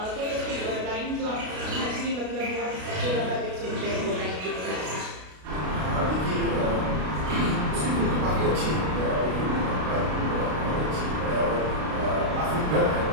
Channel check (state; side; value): late; left; 33 ms